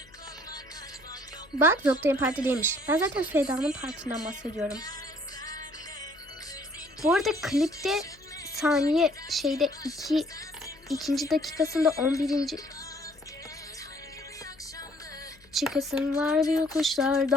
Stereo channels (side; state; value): left; noise; hum, 28 dB below the sound